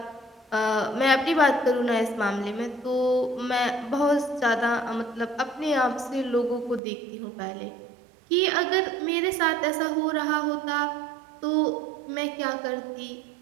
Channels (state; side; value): drops out; left; at 6.8 s